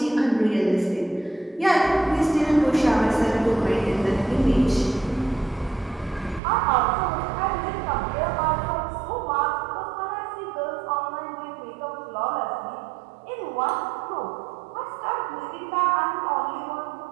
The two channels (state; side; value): drops out; left; at 6.4 s